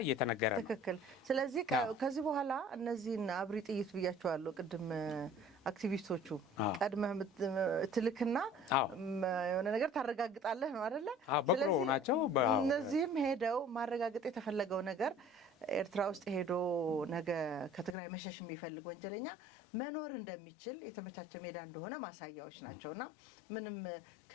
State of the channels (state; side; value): drops out; right; at 17.9 s